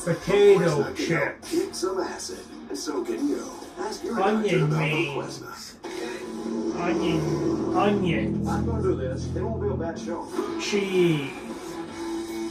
potato chips, Kick some acid, and so can you. Ask your onion doctor about rings, Voquezna. onions, I'm going to do this. It won't be a bad show. cheese,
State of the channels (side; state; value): both; identical; correlation 1.00